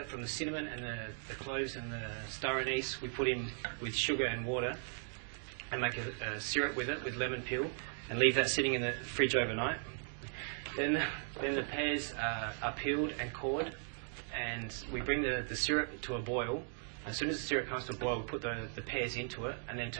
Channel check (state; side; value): silent; left; 53 dB below the other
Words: from the cinnamon and the cloves and the star anise we put in with sugar and water and make a syrup with it with lemon peel and leave that sitting in the fridge overnight. Then the pears are peeled and cored, and we bring the syrup to a boil. As soon as the syrup comes to a boil, we put the pears into it and then